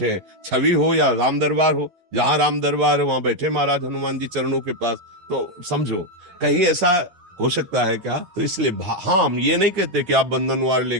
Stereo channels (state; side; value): late; left; 11 ms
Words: हैं। छवि हो या राम दरबार हो, जहाँ राम दरबार है वहां बैठे महाराज हनुमान जी चरणों के पास। तो समझो कहीं ऐसा हो सकता है क्या? तो इसलिए हाँ, हम ये नहीं कहते कि आप बंधनवार